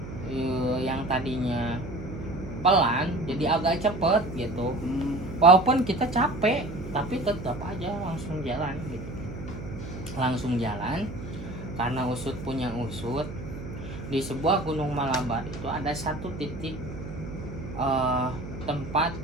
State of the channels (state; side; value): noise; right; hum, 10 dB below the sound